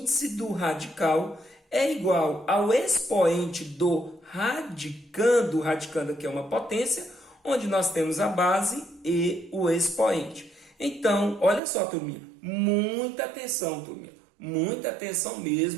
do radical é igual ao expoente do radicando, o radicando aqui é uma potência, onde nós temos a base e o expoente. Então, olha só, turminha, muita atenção, turminha, muita atenção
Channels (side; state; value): left; drops out; at 11.6 s